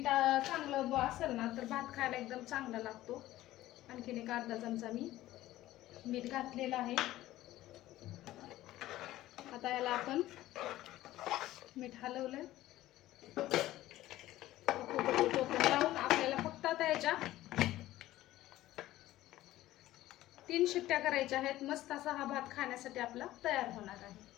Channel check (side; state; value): right; quieter; 15.4 dB